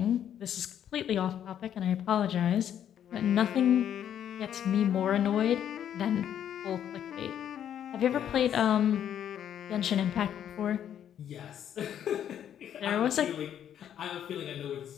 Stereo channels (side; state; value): right; quieter; 9.8 dB